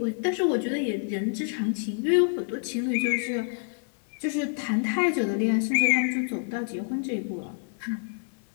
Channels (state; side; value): silent; right; 60 dB below the other